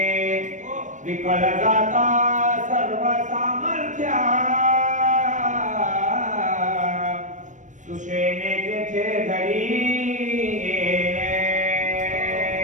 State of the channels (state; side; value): late; left; 0.36 ms